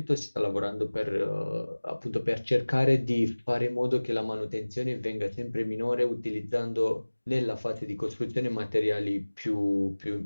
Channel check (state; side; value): inverted; both; correlation -1.00